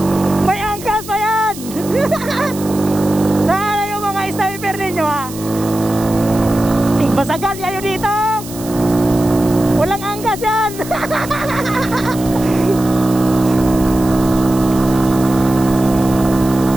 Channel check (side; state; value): right; noise; hiss, 15 dB below the sound